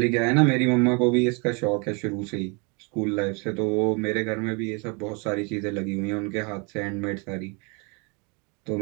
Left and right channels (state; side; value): quieter; left; 32.2 dB